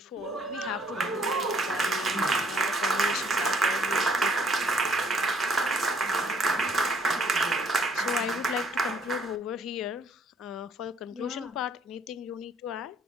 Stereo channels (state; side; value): normal; both; correlation 0.63